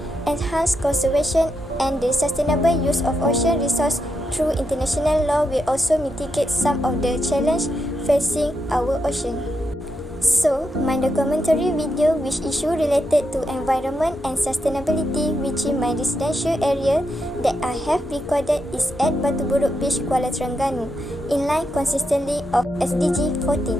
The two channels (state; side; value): normal; both; correlation 0.84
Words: enhance conservation and the sustainable use of ocean resources through international law will also mitigate some of the challenges facing our ocean. So, my documentary video which issue related to environment and sustainability within my residential area that I have recorded is at Burok Beach, Kuala Terengganu, in line consistently of